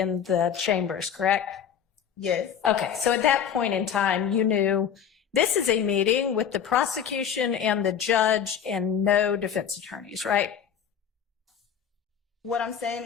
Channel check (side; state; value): right; quieter; 8.2 dB